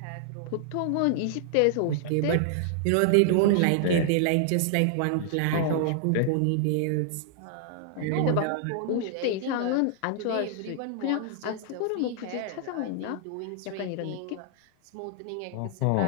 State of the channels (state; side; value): different; both; correlation -0.01